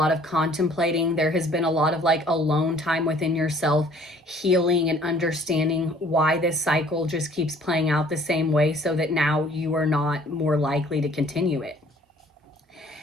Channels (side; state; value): both; normal; correlation 0.56